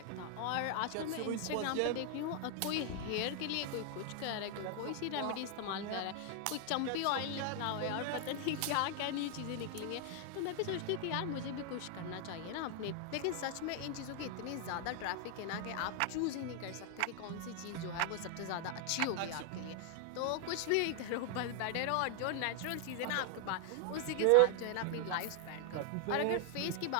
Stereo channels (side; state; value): both; different; correlation 0.00